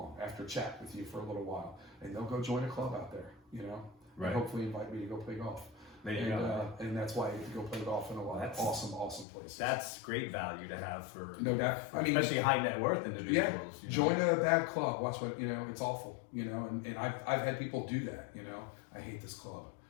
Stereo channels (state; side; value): drops out; right; at 9.2 s